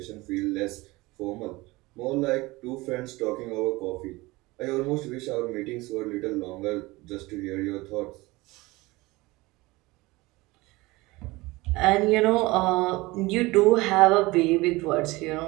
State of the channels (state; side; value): quieter; left; 21.5 dB